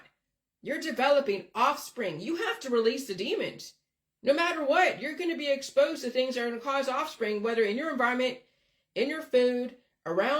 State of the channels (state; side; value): identical; both; correlation 1.00